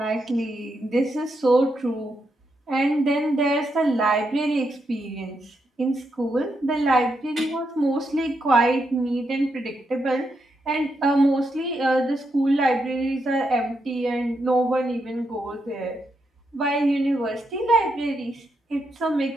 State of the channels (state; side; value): normal; both; correlation 0.82